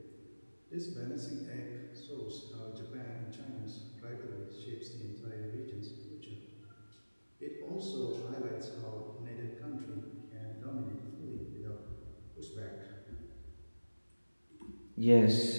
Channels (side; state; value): both; inverted; correlation -1.00